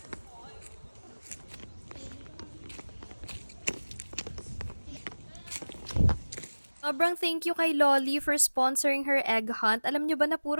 Sobrang thank you kay Lolly for sponsoring her egg hunt. Alam nyo ba na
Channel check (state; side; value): inverted; both; correlation -1.00